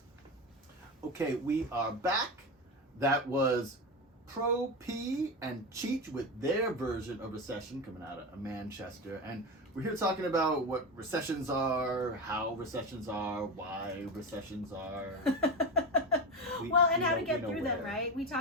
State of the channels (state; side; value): normal; both; correlation 0.19